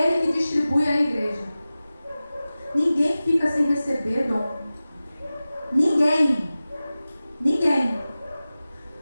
Ele que distribui à igreja. Ninguém fica sem receber dom. Ninguém.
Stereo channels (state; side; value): inverted; both; correlation -0.96